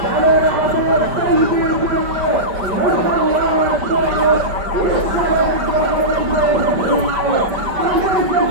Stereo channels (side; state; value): left; late; 5.2 ms